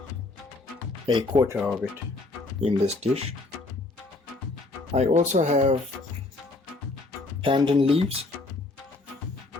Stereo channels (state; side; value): quieter; right; 3.2 dB